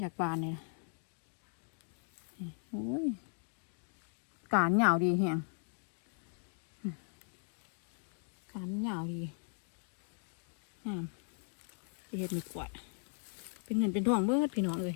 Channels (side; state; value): right; silent; 52 dB below the other